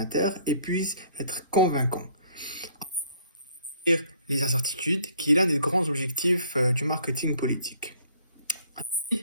et puisse être convaincant. Les incertitudes, qui est l'un des grands objectifs du marketing politique.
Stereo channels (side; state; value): both; inverted; correlation -0.60